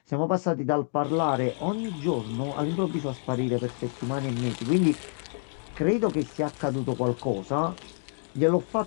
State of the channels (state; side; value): silent; right; 60 dB below the other